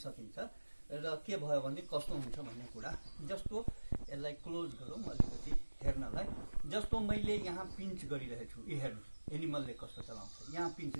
र के भयो भने कस्तो हुन्छ भन्ने कुरा जस्तो यसलाई क्लोज गरौँ अलिकति हेर्नलाई। जस्तो मैले यहाँ पिन्च गरिरहेको छु, यो हेर्नु एनिमलले कस्तो चलाउँछ। यहाँ पिन्च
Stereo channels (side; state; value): both; inverted; correlation -1.00